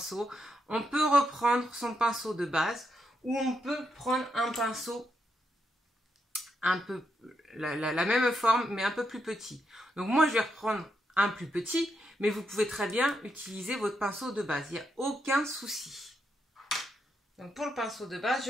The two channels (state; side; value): normal; both; correlation 0.81